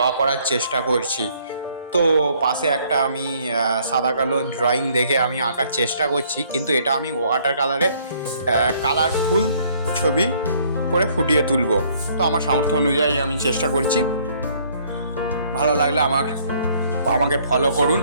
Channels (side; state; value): both; inverted; correlation -0.63